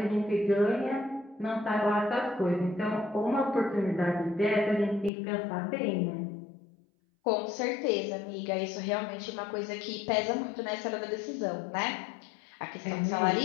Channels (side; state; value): right; drops out; at 5.1 s